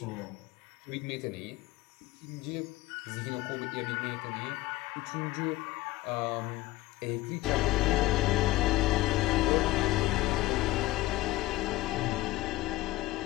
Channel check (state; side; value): quieter; right; 18.1 dB